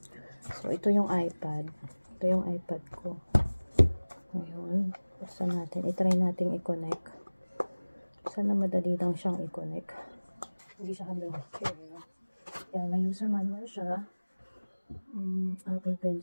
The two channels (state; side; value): inverted; both; correlation -1.00